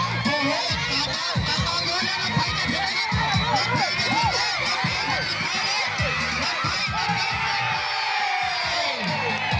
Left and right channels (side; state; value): both; identical; correlation 1.00